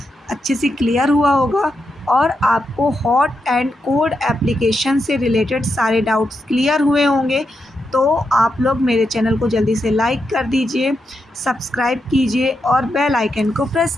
अच्छे से क्लियर हुआ होगा और आपको हॉट एंड कोल्ड एप्लीकेशन से रिलेटेड सारे डाउट्स क्लियर हुए होंगे। तो आप लोग मेरे चैनल को जल्दी से लाइक कर दीजिए, सब्सक्राइब कीजिए और बेल आइकन को प्रेस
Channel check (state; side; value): normal; both; correlation 0.85